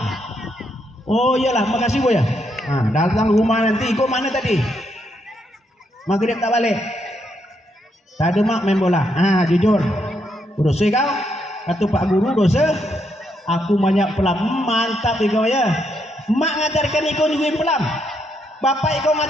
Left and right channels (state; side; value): normal; both; correlation 0.77